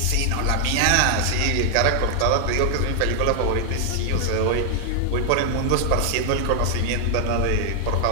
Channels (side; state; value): both; different; correlation 0.00